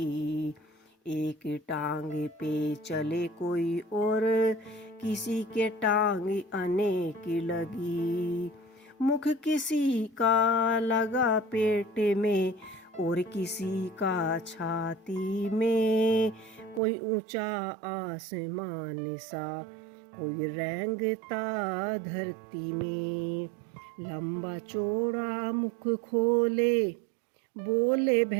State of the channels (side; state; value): left; drops out; at 16.8 s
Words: एक टांग पे चले कोई और किसी के टांग अनेक लगी। मुख किसी का लगा पेट में और किसी का छाती में, कोई ऊंचा आसमान सा कोई रेंगता धरती में। लंबा चौड़ा मुख खोले बोले